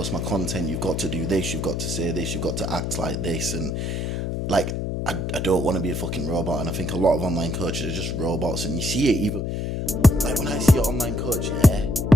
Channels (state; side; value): noise; left; hum, 2 dB below the sound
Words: my content, you've got to do this, you've got to say this, you've got to act like this, and like I don't want to be a fucking robot. And I think a lot of online coaches are just robots, and you see it even like when I see an online coach,